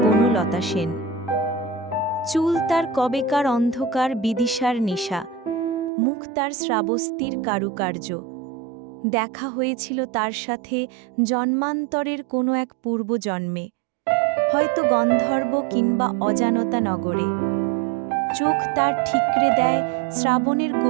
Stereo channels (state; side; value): drops out; left; at 5.9 s